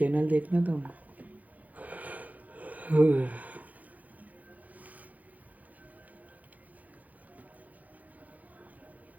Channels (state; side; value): late; left; 0.078 ms